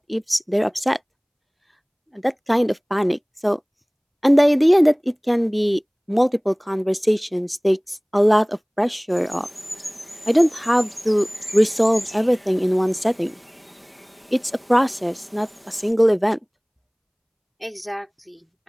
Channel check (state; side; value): identical; both; correlation 1.00